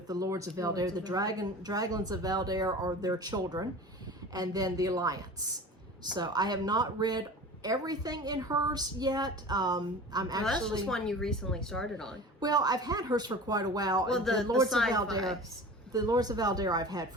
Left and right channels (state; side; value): normal; both; correlation 0.38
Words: the Lords of Valdare. The Draglins of Valdare are their children, and then the Alliance. So I have not read everything in hers yet. That's just one you recently started on. Well, I've had hers for quite a while. Well, the Lords of sci-fi. Valdare. The Lords of Valdare I've had